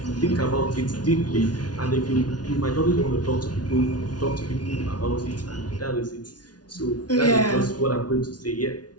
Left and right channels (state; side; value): late; right; 0.69 ms